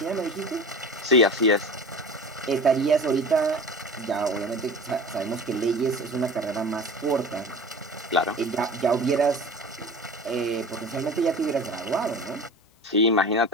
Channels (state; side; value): normal; both; correlation 0.35